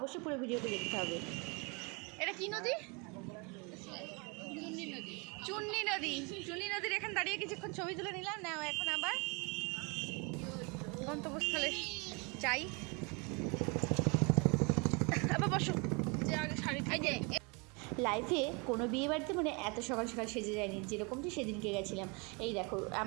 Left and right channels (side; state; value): left; quieter; 30.6 dB